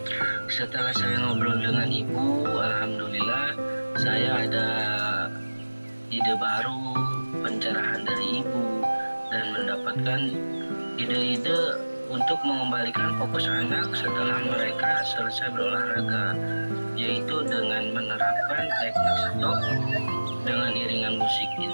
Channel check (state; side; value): inverted; both; correlation -1.00